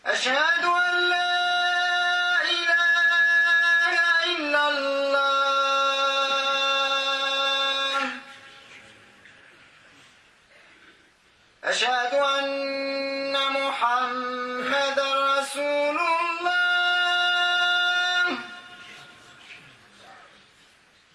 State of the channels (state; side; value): identical; both; correlation 1.00